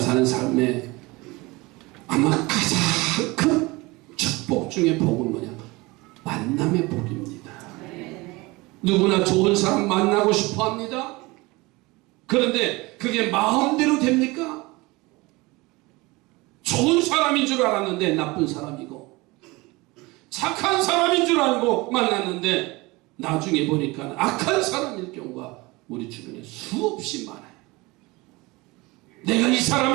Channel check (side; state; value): left; quieter; 23.1 dB